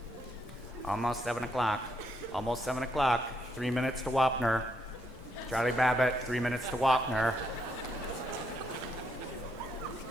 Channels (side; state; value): both; normal; correlation 0.76